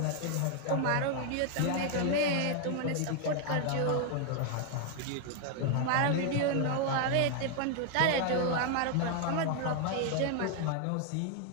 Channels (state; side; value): different; both; correlation 0.00